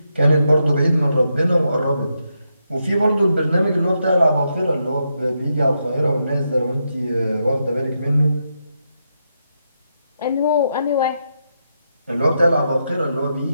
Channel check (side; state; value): both; inverted; correlation -0.83